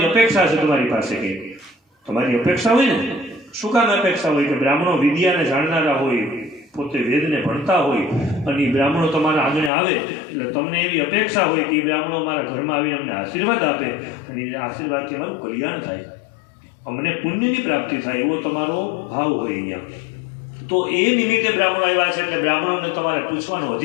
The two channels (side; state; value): right; drops out; at 9.7 s